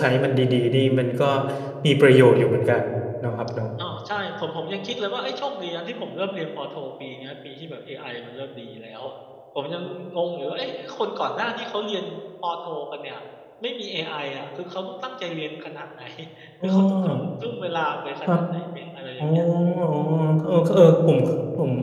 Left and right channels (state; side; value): identical; both; correlation 1.00